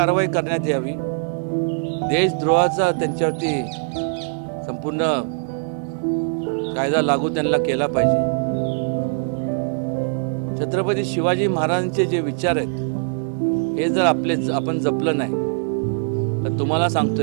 करण्यात यावी। देशद्रोहाचा त्यांच्यावरती संपूर्ण कायदा लागू त्यांना केला पाहिजे। छत्रपती शिवाजी महाराजांचे जे विचार आहेत हे जर आपण जपलं नाही तर तुम्हाला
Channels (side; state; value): left; silent; 64 dB below the other